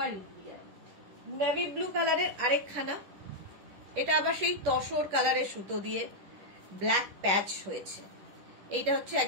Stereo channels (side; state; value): left; late; 10 ms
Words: India. Navy blue কালারের আরেকখানা, এটা আবার সেই তসর কালারের সুতো দিয়ে ব্ল্যাক প্যাচ হয়েছে। এইটা হচ্ছে